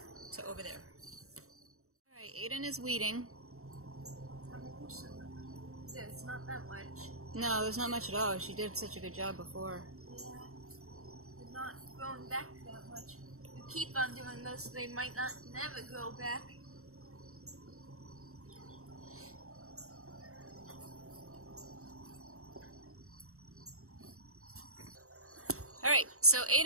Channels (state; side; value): late; left; 0.64 ms